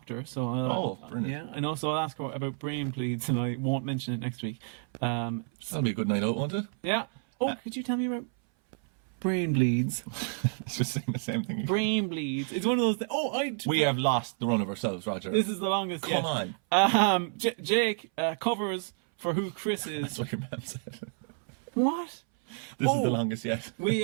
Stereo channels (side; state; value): left; silent; 58 dB below the other